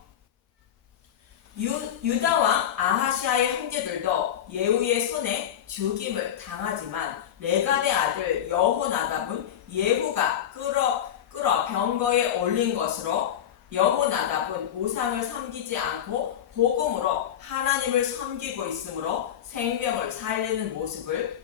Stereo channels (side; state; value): right; quieter; 10.0 dB